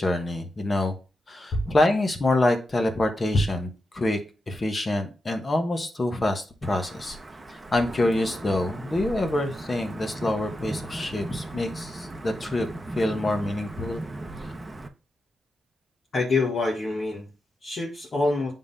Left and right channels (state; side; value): normal; both; correlation 0.88